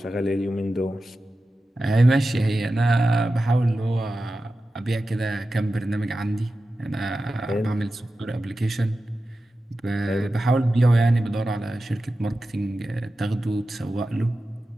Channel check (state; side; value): normal; both; correlation 0.93